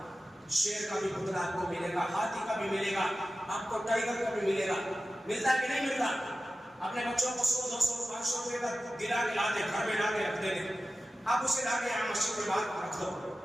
شیر کا بھی پتلا آپ کو ملے گا، ہاتھی کا بھی ملے گا، آپ کو ٹائگر کا بھی ملے گا، ملتا کہ نہیں ملتا؟ اپنے بچوں کو 100 200 500 روپے کا گرا کے لاتے، گھر میں لا کے رکھ دیتے، آپ اسے لا کے یہاں مسجد کے باہر رکھ دو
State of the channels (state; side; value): normal; both; correlation 0.94